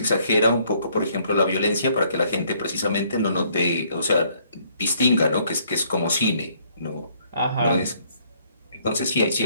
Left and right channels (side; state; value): both; inverted; correlation -0.66